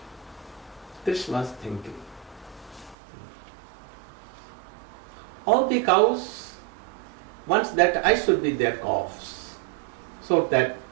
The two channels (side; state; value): left; drops out; at 3.0 s